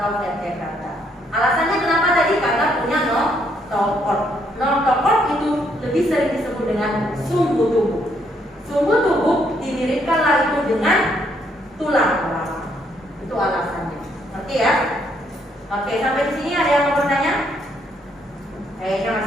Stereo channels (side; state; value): both; normal; correlation 0.71